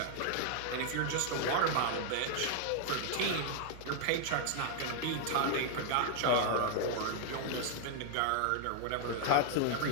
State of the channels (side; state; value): both; different; correlation 0.00